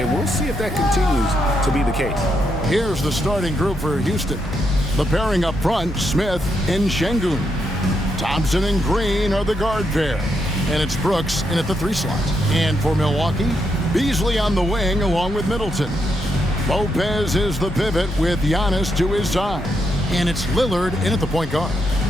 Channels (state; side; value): normal; both; correlation 0.80